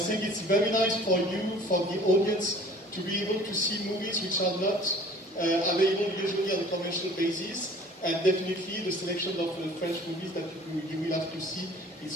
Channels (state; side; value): normal; both; correlation 0.49